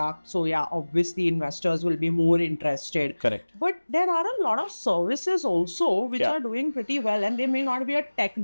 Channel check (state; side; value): inverted; both; correlation -1.00